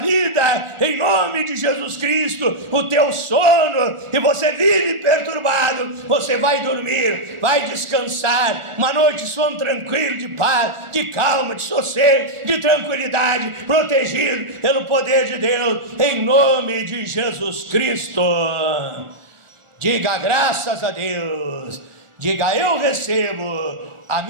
em nome de Jesus Cristo. O teu sono, e você vive perturbado, você vai dormir, vai descansar. Uma noite de sono tranquilo, de paz, de calma, de sossego, de tranquilidade, protegido pelo poder de Deus em nome de Jesus Cristo. Diga graças a Deus, diga eu recebo a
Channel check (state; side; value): late; left; 1.4 ms